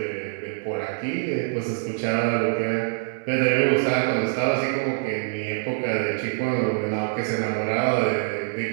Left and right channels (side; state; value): left; silent; digital silence